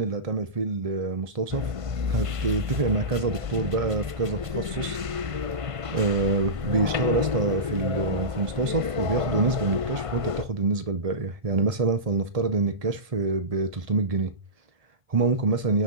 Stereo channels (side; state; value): left; late; 1.5 ms